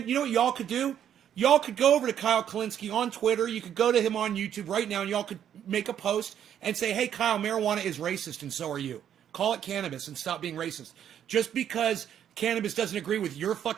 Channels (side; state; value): left; quieter; 9.6 dB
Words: you know what y'all could do? Y'all could go over to Kyle Kalinske on Twitter. You could go to him on YouTube right now, and y'all could make a post and say, hey, Kyle, marijuana is racist, and so are you. Call it cannabis and stop being racist. Just because cannabis doesn't agree with your